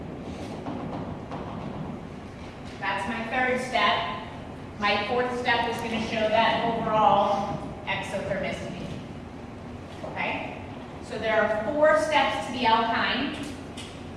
that's my third step. My fourth step is going to show that overall exothermicity. Okay? So there are 4 steps to the alkyne.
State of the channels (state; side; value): identical; both; correlation 1.00